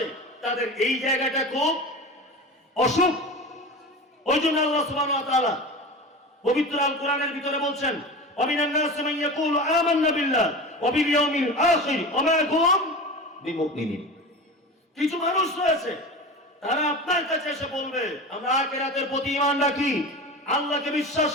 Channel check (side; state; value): both; normal; correlation 0.30